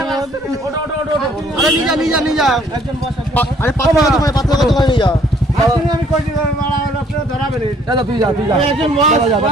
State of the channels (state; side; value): normal; both; correlation 0.62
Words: আরে নিয়ে যা, আরে 5 টাকা দোকানে, 5 টাকা দোকানে নিয়ে যা। আমি কই দিলাম মারা হলো, আপনি ধরাবেন দাদা, তুই যা একজন বস